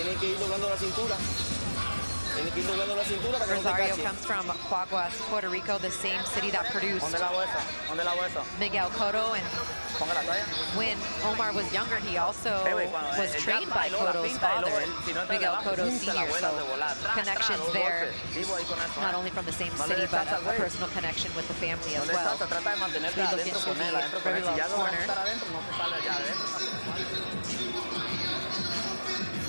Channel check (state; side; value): inverted; both; correlation -1.00